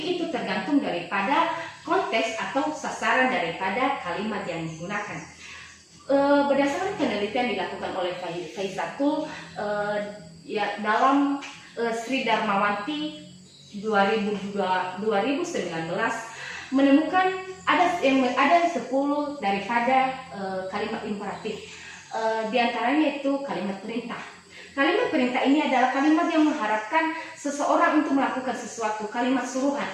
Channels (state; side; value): identical; both; correlation 1.00